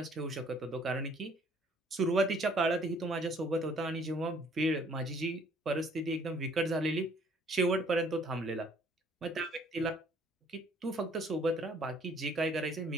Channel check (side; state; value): both; normal; correlation 0.60